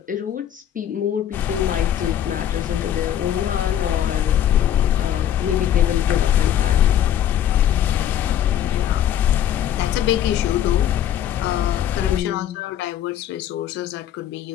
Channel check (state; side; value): quieter; right; 10.8 dB